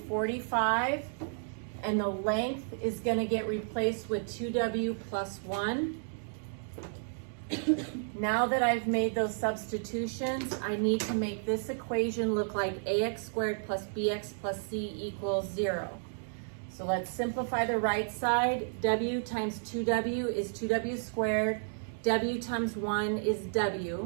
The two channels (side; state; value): left; silent; digital silence